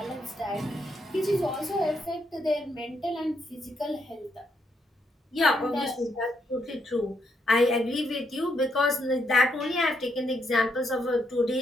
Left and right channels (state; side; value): normal; both; correlation 0.77